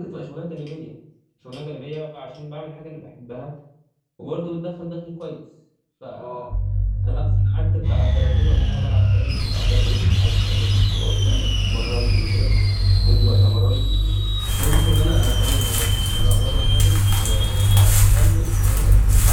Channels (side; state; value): both; identical; correlation 1.00